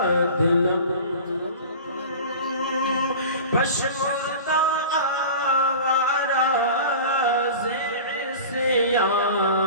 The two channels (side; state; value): both; inverted; correlation -0.36